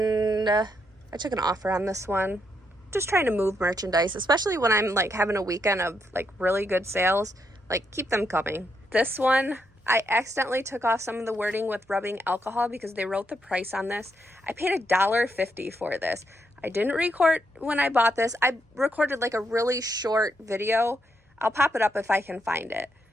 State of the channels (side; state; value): both; normal; correlation 0.79